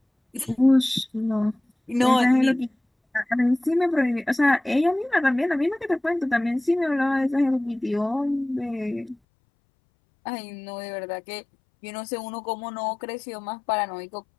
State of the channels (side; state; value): right; drops out; at 9.2 s